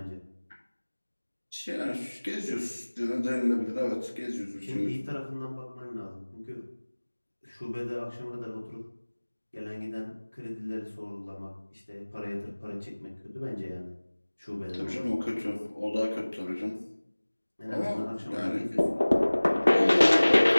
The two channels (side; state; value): both; inverted; correlation -1.00